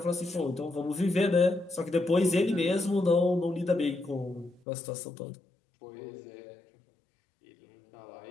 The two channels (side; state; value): right; drops out; at 4.6 s